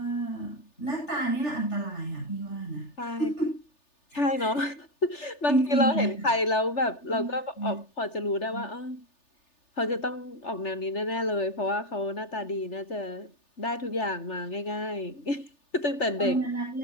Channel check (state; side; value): late; right; 3.4 ms